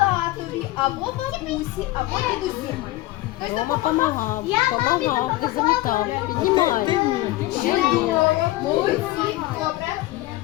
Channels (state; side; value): quieter; right; 17.8 dB